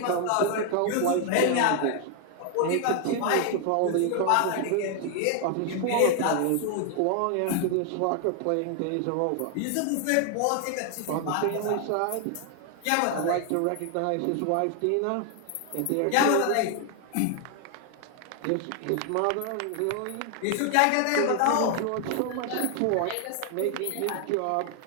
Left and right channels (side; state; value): both; different; correlation 0.00